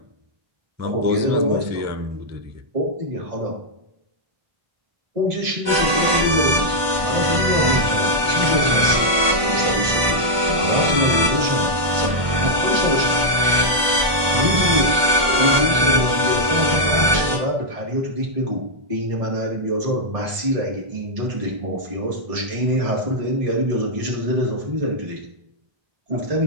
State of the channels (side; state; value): left; late; 1.2 ms